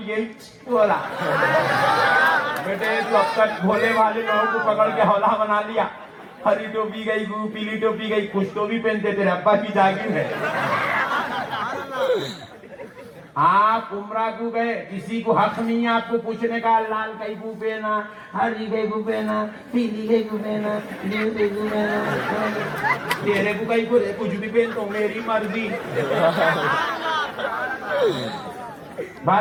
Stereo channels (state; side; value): identical; both; correlation 1.00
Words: بولا بیٹے تو اب تک بھولے والے لوگوں کو پکڑ کے حوالہ بنا لیا. ہری ٹوپی گئی گو, پیلی ٹوپی گئی, کچھ تو بھی پہنتے تیرے ابا کی جاگیر ہے. آپ عمرہ کو گئے, کسی کو حق نہیں ہے آپ کو پوچھنے کا لال کئی کو پہنا, ہری کئی کو پہنا, پیلی کئی کو پہنا, نیل کئی کو پہنا, تیرے کو کئی کو کچھ بھی پہن تو میری مرضی.